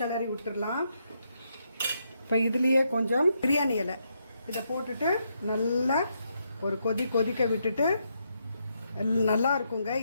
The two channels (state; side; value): inverted; both; correlation -0.79